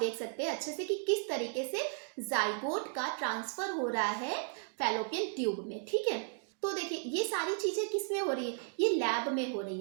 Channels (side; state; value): left; silent; 55 dB below the other